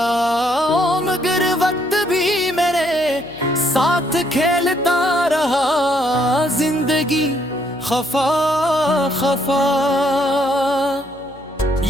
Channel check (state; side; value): noise; left; hum, 23 dB below the sound